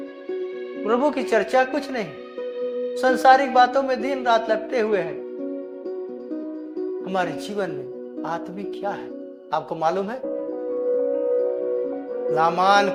प्रभु की चर्चा कुछ नहीं। संसारिक बातों में दिन रात लपटे हुए हैं। हमारे जीवन में आत्मिक क्या है आपको मालूम है? लामान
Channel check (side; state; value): both; identical; correlation 1.00